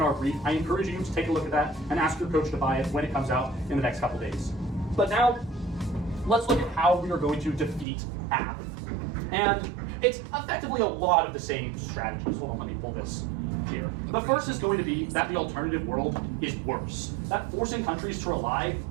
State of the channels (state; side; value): drops out; left; at 7.9 s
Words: our brief. I encourage you to take a look at that and ask your coach to buy it when it comes out in the next couple days. But now, let's look at how we are going to defeat AF. And it's effectively a lot of the same strategies. Hold on, let me pull this here. The first is going to be that the alternative world is worse. That forcing countries to rely